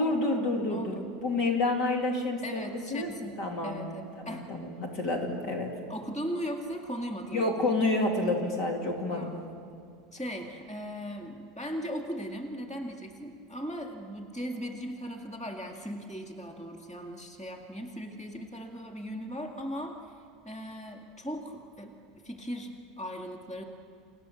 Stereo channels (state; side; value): normal; both; correlation 0.32